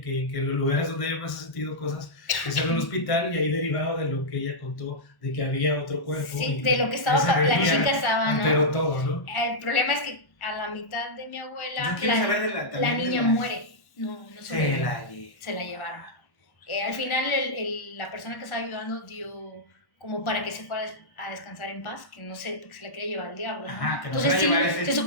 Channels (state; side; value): late; right; 1.1 ms